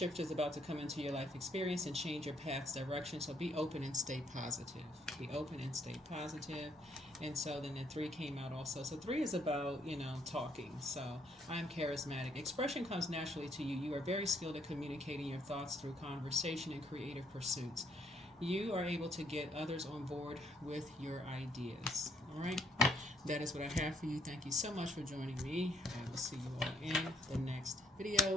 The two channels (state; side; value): normal; both; correlation 0.68